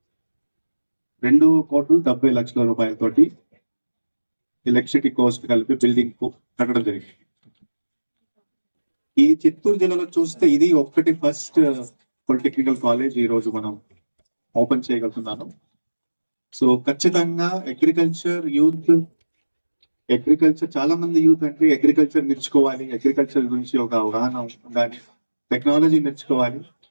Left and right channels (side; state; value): both; inverted; correlation -1.00